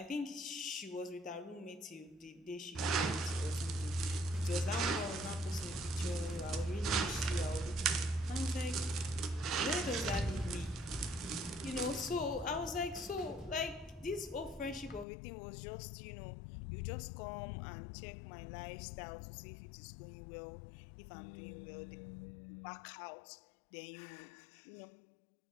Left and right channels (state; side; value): drops out; right; at 15.1 s